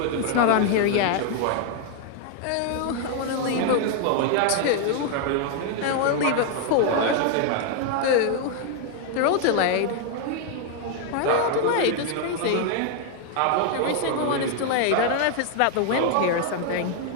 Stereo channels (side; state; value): both; different; correlation 0.00